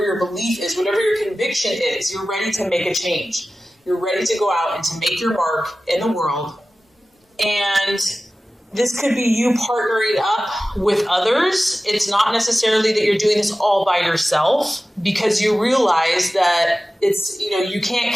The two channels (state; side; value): normal; both; correlation 0.95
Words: your belief is, whatever your conviction is, you're ready to make a change. You're ready to go out and to make your mark in the world. And this could be you partnering up with others. It's not necessarily that you're doing this all by yourself, because you realize that you can't